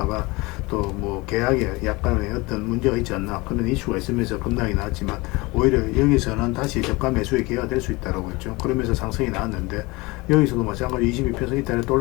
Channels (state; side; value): quieter; right; 23.6 dB